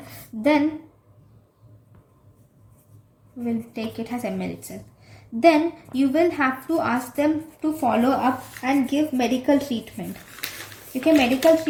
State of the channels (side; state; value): both; identical; correlation 1.00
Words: then we'll take it as ml itself. Then you will have to ask them to follow up and give medical treatment. Okay, medical